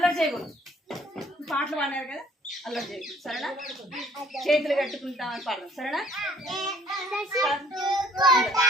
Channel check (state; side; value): normal; both; correlation 0.57